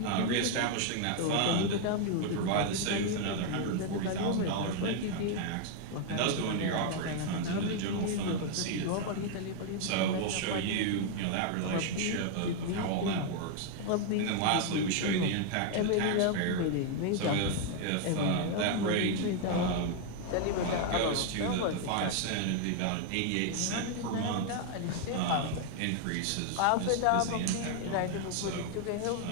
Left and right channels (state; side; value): different; both; correlation 0.00